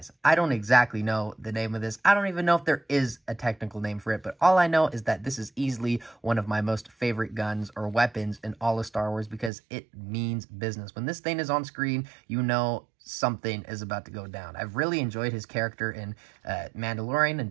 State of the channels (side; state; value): left; drops out; at 9.5 s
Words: I don't exactly know the name of this. I don't even know if there is a technical name for it, but all I know is that this is easily one of my most favorite guns or weapons in all of Star Wars, because it means business. When this thing is on screen, you know something is about to go down. I've really enjoyed his character in Mandalorian